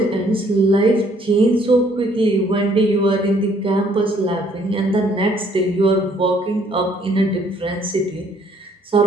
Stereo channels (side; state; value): both; normal; correlation 0.63